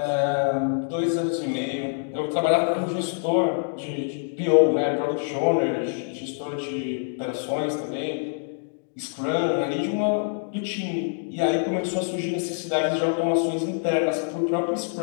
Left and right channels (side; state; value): right; silent; digital silence